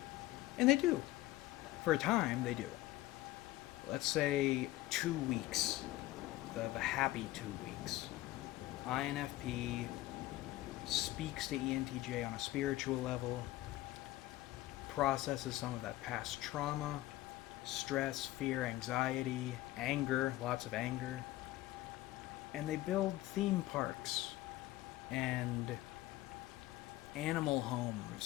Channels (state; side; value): quieter; right; 16.6 dB